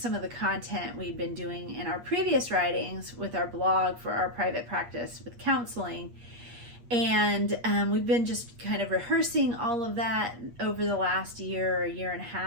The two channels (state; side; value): late; left; 8.5 ms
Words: of the content we'd been doing in our previous writings with our blog for our private practice with counseling. And we've been just kind of rehearsing all of that over the last year or year and a